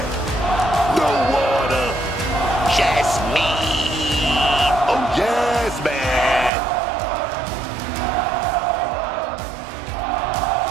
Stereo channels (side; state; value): left; drops out; at 6.5 s